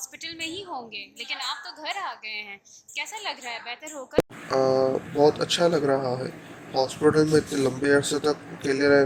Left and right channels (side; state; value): both; identical; correlation 1.00